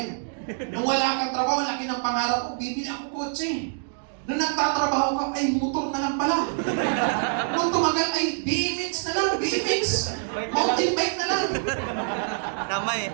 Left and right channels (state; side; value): silent; left; digital silence